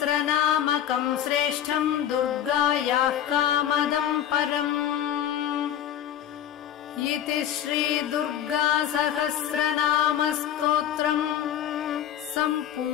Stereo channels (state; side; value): quieter; right; 10.4 dB